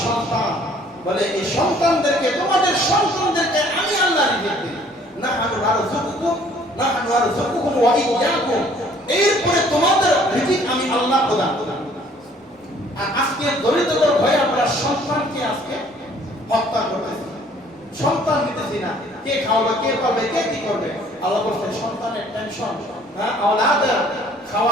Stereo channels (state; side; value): normal; both; correlation 0.58